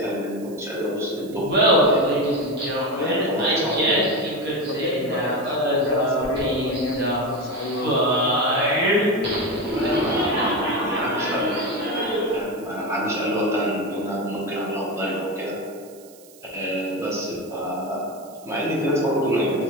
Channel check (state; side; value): noise; right; hiss, 24 dB below the sound